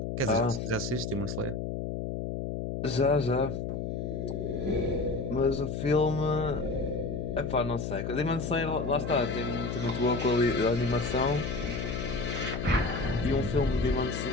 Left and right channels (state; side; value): noise; left; hum, 3 dB below the sound